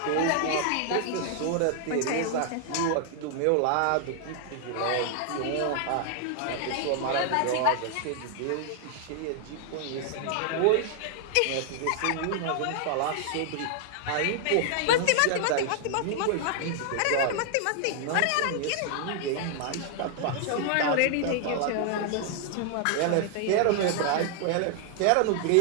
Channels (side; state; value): both; different; correlation 0.00